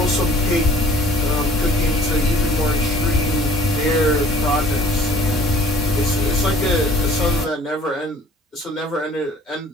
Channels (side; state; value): both; normal; correlation 0.52